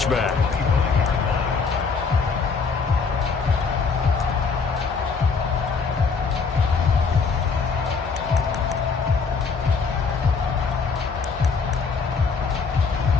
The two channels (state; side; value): quieter; right; 5.1 dB